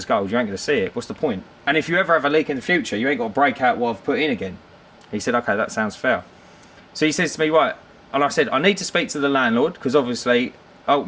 gold. You ain't going to see it. What's the point? And if you ever have a leak in the future, you ain't got to break out what I've put in again. He said, okay, that sounds fair. So he says to me, right. And I said, I need to speak to the landlord because obviously,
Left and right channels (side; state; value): both; identical; correlation 1.00